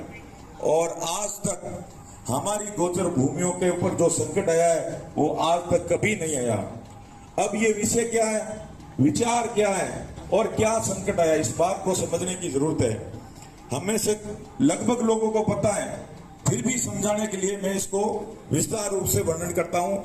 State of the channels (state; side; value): identical; both; correlation 1.00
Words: और आज तक हमारी गोचर भूमियों के ऊपर जो संकट आया है वो आज तक कभी नहीं आया। अब ये विषय क्या है, विचार क्या है और क्या संकट आया, इस बात को समझने की जरूरत है। हमें से लगभग लोगों को पता है, फिर भी समझाने के लिए मैं इसको विस्तार रूप से वर्णन करता हूं